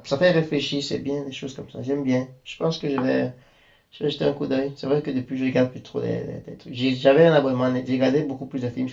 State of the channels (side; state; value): both; identical; correlation 1.00